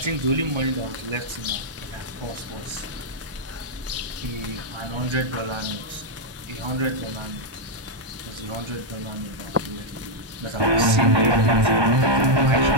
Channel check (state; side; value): late; left; 1.3 ms